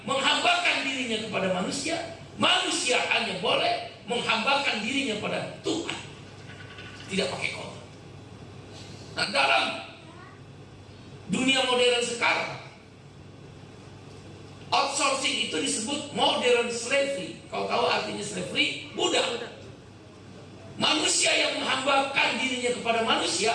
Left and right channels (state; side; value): identical; both; correlation 1.00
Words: menghambakan dirinya kepada manusia. Manusia hanya boleh menghambakan dirinya pada Tuhan, tidak pakai kotor. Nah, dalam dunia modern sekarang, outsourcing itu disebut modern slavery. Kau tahu artinya slavery? Budak. Manusia yang menghambakan dirinya kepada manusia,